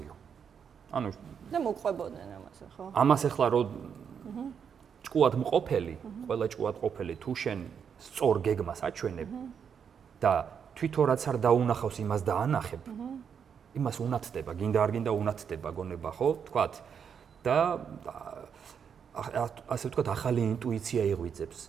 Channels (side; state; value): left; quieter; 7.2 dB